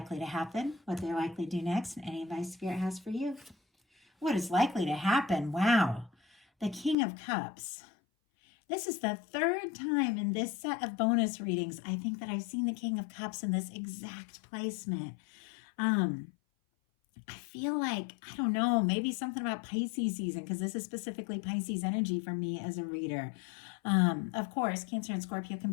to happen, what they're likely to do next, and any advice Spirit has for you. What is likely to happen? Wow. The King of Cups. This is the third time in this set of bonus readings, I think, that I've seen the King of Cups in this exact placement. I feel like, I don't know, maybe something about Pisces season, because this is specifically Pisces energy for me as a reader. Of course, Cancer and Scorpio can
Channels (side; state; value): right; drops out; at 7.0 s